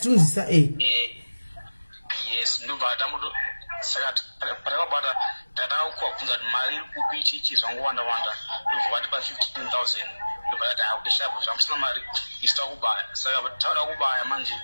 yes ndobva tamuto saka patakabata tatakubvunza kuti mari iri kupi ichichi zvangowanda wanda ndobva vatipa 15,000 ndobva tati haudeshapo zvamusina mari isi takubaya saka tauda kubaya manje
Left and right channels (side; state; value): both; inverted; correlation -1.00